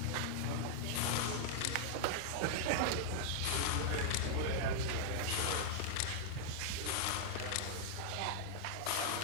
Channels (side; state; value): both; different; correlation -0.01